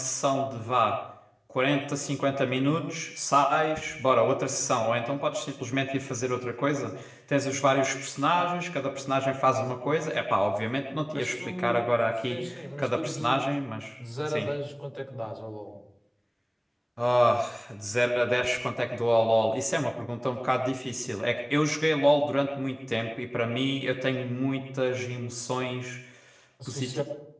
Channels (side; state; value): both; identical; correlation 1.00